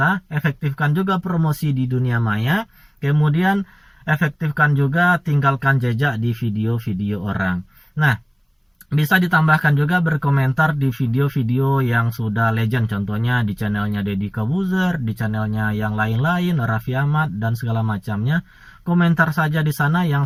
efektifkan juga promosi di dunia maya, kemudian efektifkan juga tinggalkan jejak di video-video orang. Nah, bisa ditambahkan juga berkomentar di video-video yang sudah legend, contohnya di channelnya Deddy Kobuzer, di channelnya yang lain-lain, Raffi Ahmad dan segala macamnya. Komentar saja di sana yang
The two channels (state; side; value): identical; both; correlation 1.00